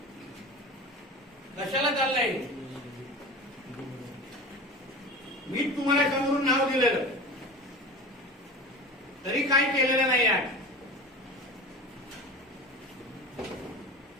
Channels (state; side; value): normal; both; correlation 0.33